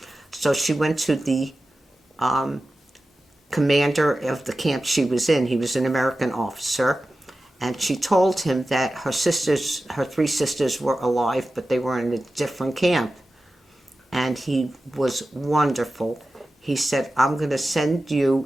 So she went to the commander of the camp she was in. He was an American officer. And she told him that her 3 sisters were alive, but they were in a different camp. And he was wonderful. He said, I'm going to send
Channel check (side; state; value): both; normal; correlation 0.94